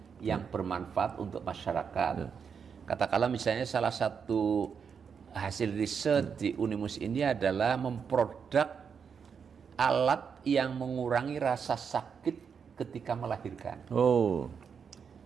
yang bermanfaat untuk masyarakat. Katakanlah misalnya salah satu hasil riset di Unimus ini adalah memproduk alat yang mengurangi rasa sakit ketika melahirkan.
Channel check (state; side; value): quieter; left; 6.6 dB